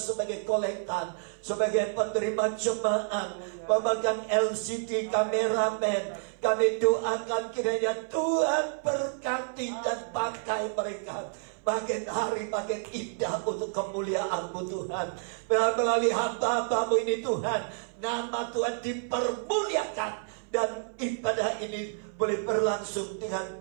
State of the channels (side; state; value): left; silent; 58 dB below the other